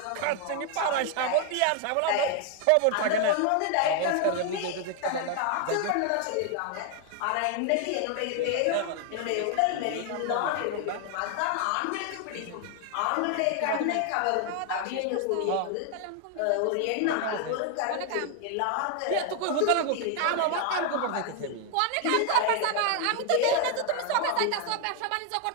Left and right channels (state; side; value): different; both; correlation 0.00